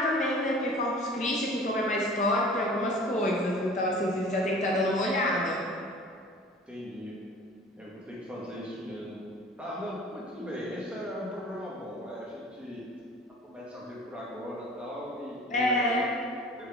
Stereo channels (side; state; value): both; normal; correlation 0.45